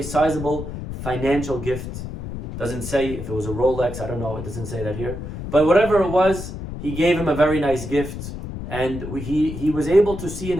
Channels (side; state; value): left; noise; rumble, 8 dB below the sound